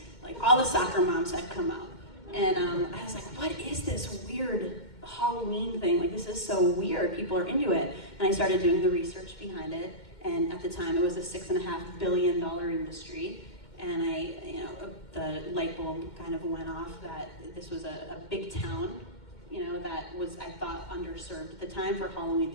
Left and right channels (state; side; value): late; right; 2.1 ms